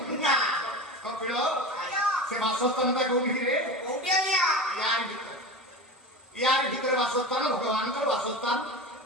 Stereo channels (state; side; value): normal; both; correlation 0.28